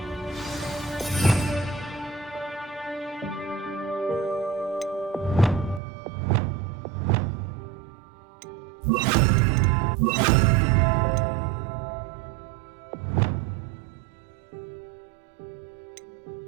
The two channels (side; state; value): left; drops out; at 5.8 s